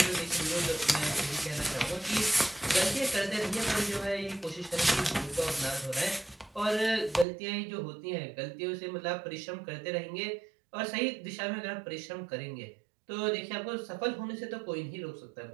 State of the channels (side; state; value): left; drops out; at 7.2 s